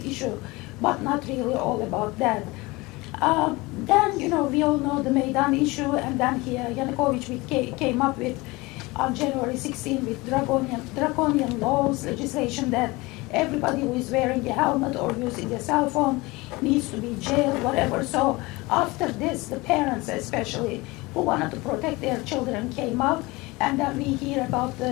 issue, but not really all about that. Then, you know, we all know the Maidan issue, and then here Yanukovych came up with on January 16 with draconian laws, legislation that everybody who is wearing a helmet or using a cell phone needs to be jailed, whatever. So after this, the parents especially who wanted to protect their children came out, and then we hear about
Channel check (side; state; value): right; quieter; 22.8 dB